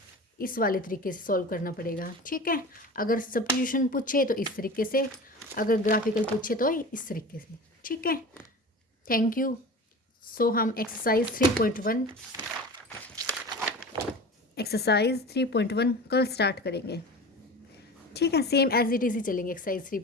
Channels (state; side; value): normal; both; correlation 0.34